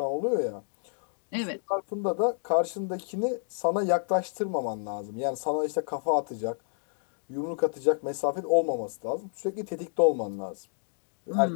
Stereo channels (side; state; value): right; silent; digital silence